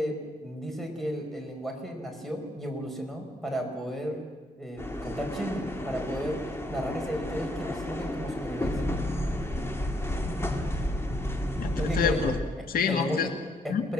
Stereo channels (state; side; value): normal; both; correlation 0.70